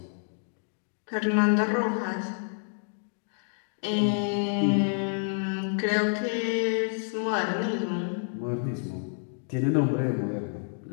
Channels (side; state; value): right; silent; digital silence